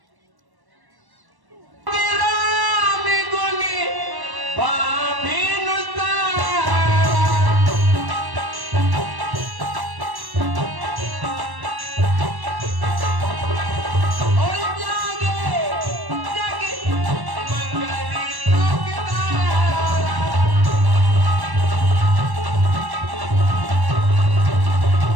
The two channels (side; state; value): left; late; 1.1 ms